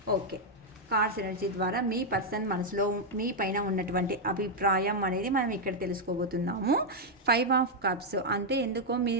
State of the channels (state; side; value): normal; both; correlation -0.01